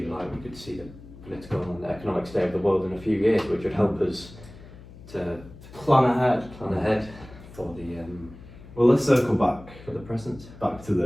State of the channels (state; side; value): noise; left; hum, 18 dB below the sound